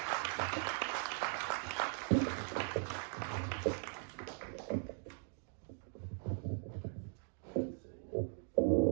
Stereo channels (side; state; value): left; silent; 51 dB below the other